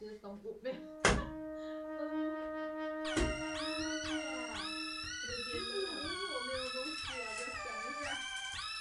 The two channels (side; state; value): both; identical; correlation 1.00